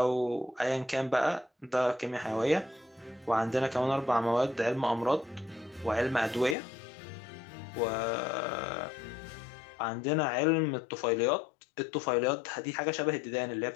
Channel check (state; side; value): drops out; right; at 6.6 s